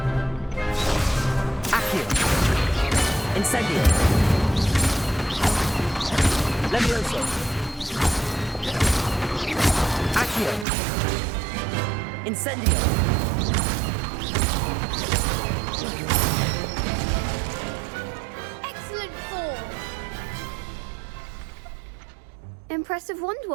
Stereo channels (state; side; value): drops out; left; at 10.7 s